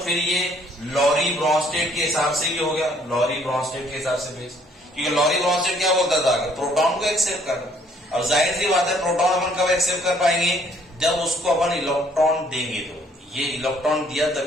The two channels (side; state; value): both; normal; correlation 0.63